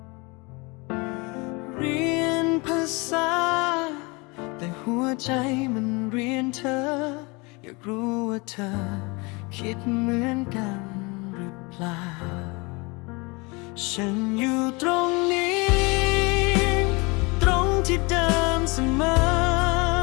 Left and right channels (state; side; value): quieter; right; 27.5 dB